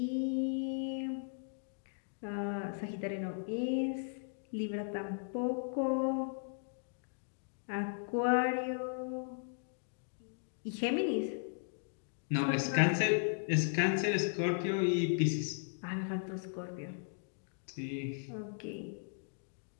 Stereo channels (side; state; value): right; silent; digital silence